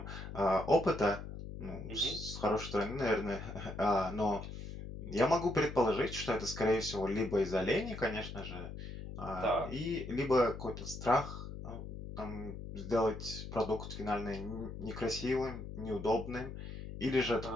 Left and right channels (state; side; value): noise; left; hum, 9 dB below the sound